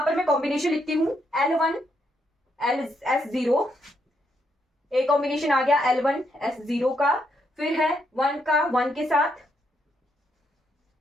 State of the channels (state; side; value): normal; both; correlation 0.77